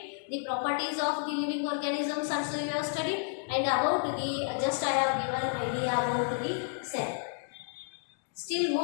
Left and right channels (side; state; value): right; silent; 57 dB below the other